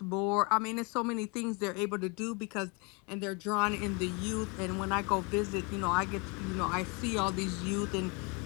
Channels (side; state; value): right; quieter; 31.2 dB